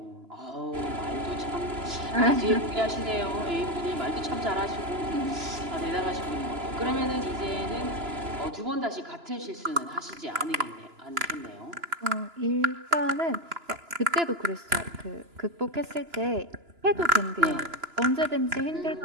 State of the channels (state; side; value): late; left; 2.9 ms